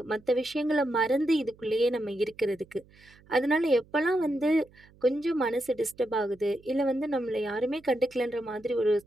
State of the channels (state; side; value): noise; right; hum, 27 dB below the sound